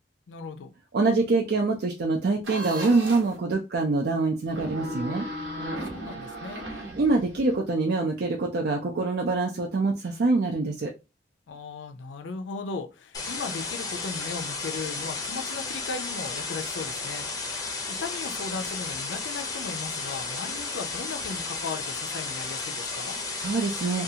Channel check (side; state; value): both; normal; correlation 0.42